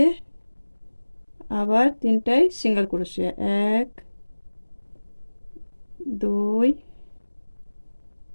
আবার 3টায় সিঙ্গেল ক্রোশে, 1 2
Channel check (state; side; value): inverted; both; correlation -1.00